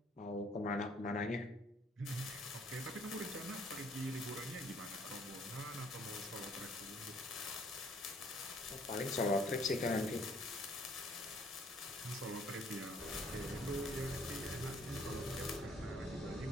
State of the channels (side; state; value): both; normal; correlation 0.62